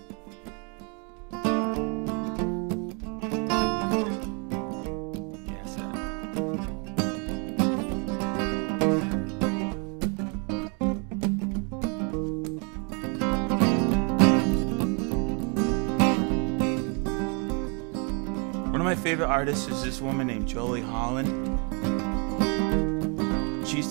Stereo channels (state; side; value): quieter; left; 35.2 dB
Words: Favorite artist is this woman named Jolie Holland. She